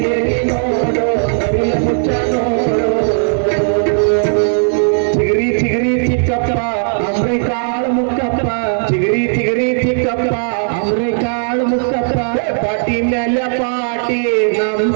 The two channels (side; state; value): left; silent; digital silence